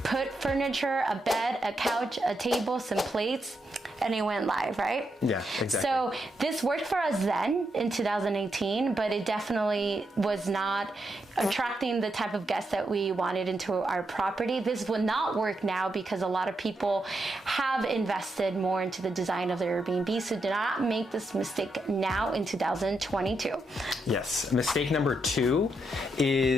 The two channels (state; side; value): normal; both; correlation 0.82